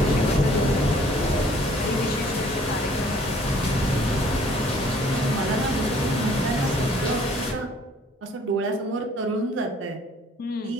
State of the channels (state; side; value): normal; both; correlation 0.58